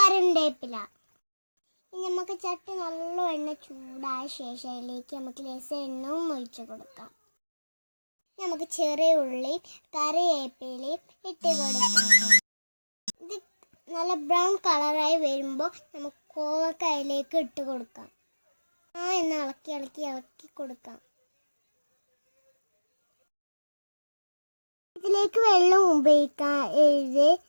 ഇനി നമുക്ക് ചട്ടി നല്ല എണ്ണ ചൂടായ ശേഷം അതിലേക്ക് നമുക്ക് ലേശം എണ്ണയും ഒഴിച്ച് കൊടുക്കാം. നമുക്ക് ചെറിയ ഉള്ളി, കറിവേപ്പിലയും ഇട്ട് കൊടുക്കാം. ഇത് നല്ല ബ്രൗൺ കളറായി വരുമ്പോൾ നമുക്ക് കോവക്ക അതിലേക്ക് ഇട്ട് കൊടുക്കാം. എന്ന് ഇളക്കി കൊടുക്കാം. ഇതിലേക്ക് വെള്ളം ഉപയോഗിക്കാം.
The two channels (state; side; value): inverted; both; correlation -1.00